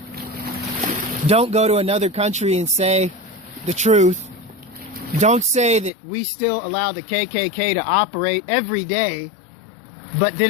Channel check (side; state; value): right; drops out; at 5.9 s